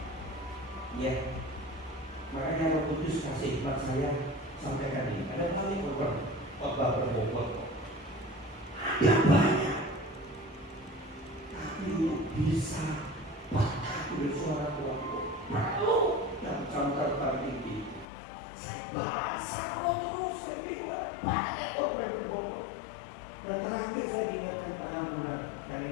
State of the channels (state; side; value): drops out; right; at 18.1 s